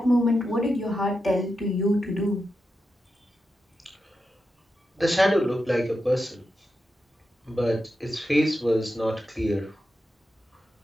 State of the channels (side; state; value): both; normal; correlation 0.88